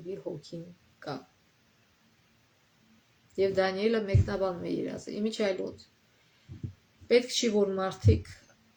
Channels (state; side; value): identical; both; correlation 1.00